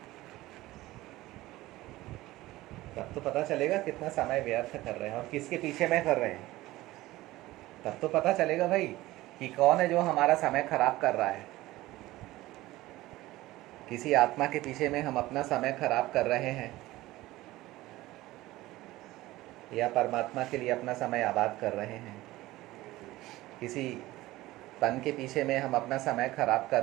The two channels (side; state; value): left; quieter; 17.7 dB